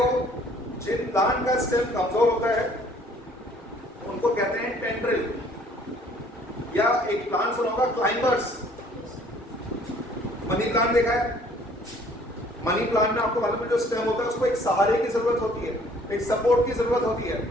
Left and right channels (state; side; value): normal; both; correlation 0.57